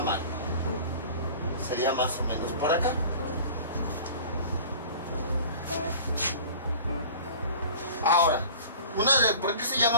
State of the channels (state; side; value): inverted; both; correlation -0.41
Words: Sería más o menos por acá. Ahora, ¿por qué se